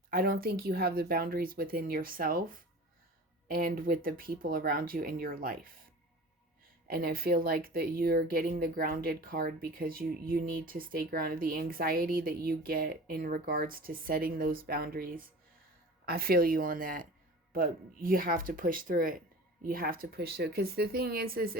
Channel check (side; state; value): both; normal; correlation 0.38